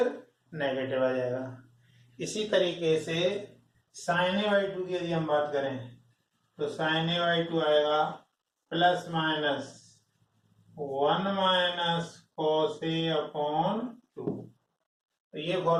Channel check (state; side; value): identical; both; correlation 1.00